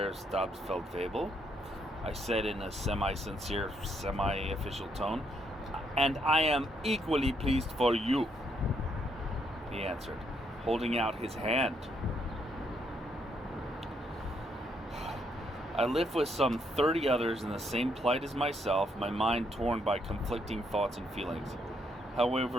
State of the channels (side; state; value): both; normal; correlation 0.74